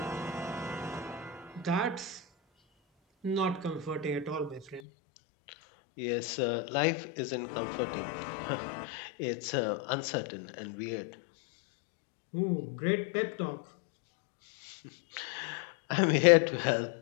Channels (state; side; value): drops out; right; at 4.8 s